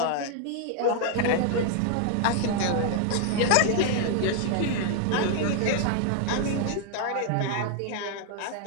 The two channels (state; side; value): different; both; correlation 0.00